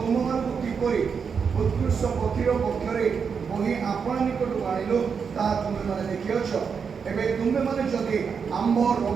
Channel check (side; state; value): left; quieter; 6.2 dB